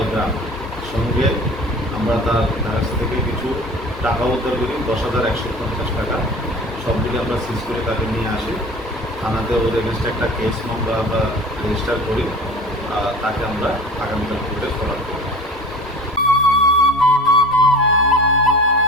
গ্রাম। সঙ্গে আমরা তার কাছ থেকে কিছু টাকা উদ্ধার করি, 10,150 টাকা। সব দিকে আমরা সিজ করে তাকে নিয়ে আসি থানাতে। ওর এগেনস্টে একটা কেস মামলা আমরা রেজিস্টার করি। তাকে আমরা আগামীকাল কোর্টে ফরওয়ার্ড করি।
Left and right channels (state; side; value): normal; both; correlation 0.39